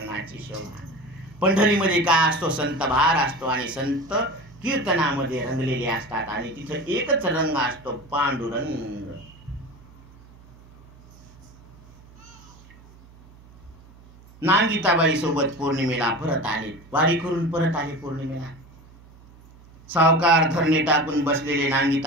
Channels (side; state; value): right; noise; hum, 24 dB below the sound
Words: शोभा. पंढरीमध्ये काय असतो, संत भार असतो आणि संत कीर्तनामध्ये रंगलेले असतात आणि तिथं एकच रंग असतो, पांडुरंग. नांगिताबाई सोबत पौर्णिमेला परत आले, वारी करून परत आले पौर्णिमेला. सावकार धरणे टाकून बसलेले